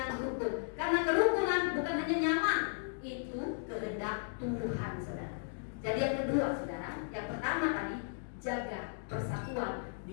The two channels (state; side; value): silent; right; digital silence